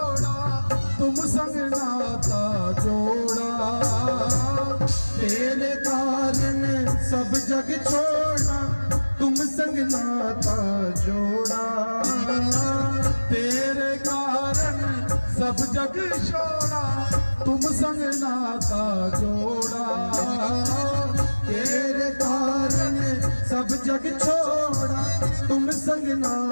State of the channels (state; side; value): inverted; both; correlation -1.00